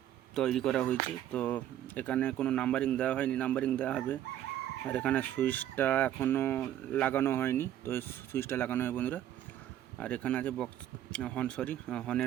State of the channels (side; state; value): left; quieter; 11.7 dB